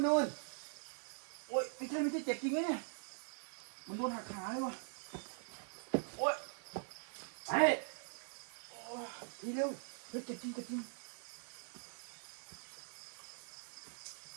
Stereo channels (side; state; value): left; silent; digital silence